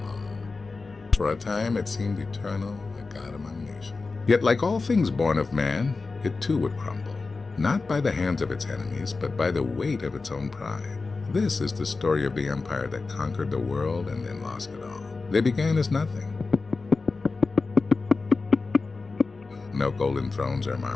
For a time it seemed eternal, a god among nations. Yet like all things born of man, it too would crumble, not by the hands of its enemies, but by the weight of its own pride. This is the story of the empire that conquered the world and then lost it all. They began as nothing. No golden thrones or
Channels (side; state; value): right; quieter; 4.0 dB